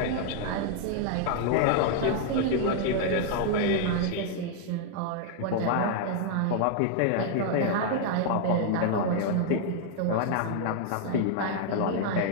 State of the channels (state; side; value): different; both; correlation 0.00